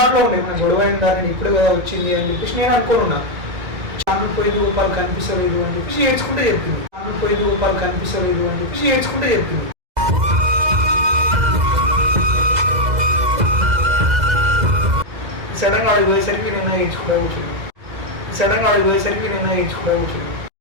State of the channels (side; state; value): left; late; 2.0 ms